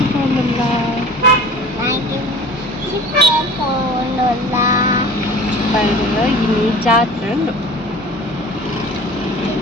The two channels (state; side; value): normal; both; correlation 0.42